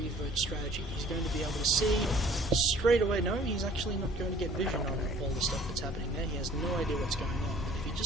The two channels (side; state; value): both; normal; correlation 0.53